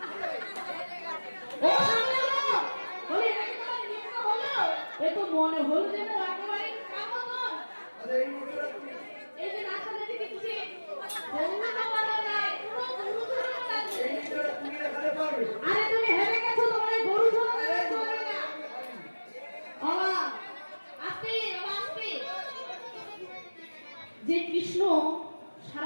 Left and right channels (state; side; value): inverted; both; correlation -1.00